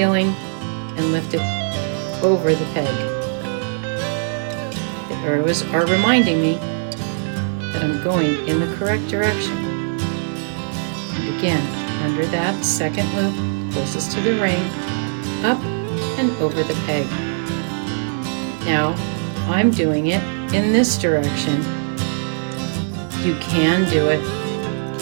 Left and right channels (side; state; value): left; silent; digital silence